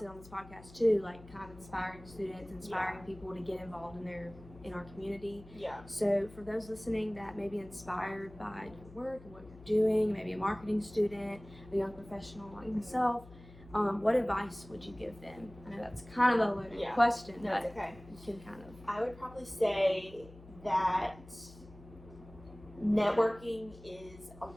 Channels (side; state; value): left; noise; hum, 19 dB below the sound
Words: on this podcast too, like, kind of inspiring students, inspiring people to get involved in our community. Yeah. So for those listening that may be inspired by your work and what you're doing, maybe a marketing student, a young professional like myself, what advice would you give them? I know that's kind of a loaded question, but it's okay. You can kind of. I would probably say that networking is a